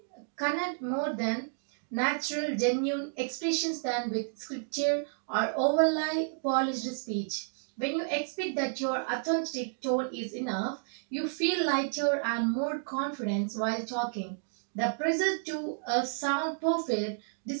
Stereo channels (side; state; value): left; silent; digital silence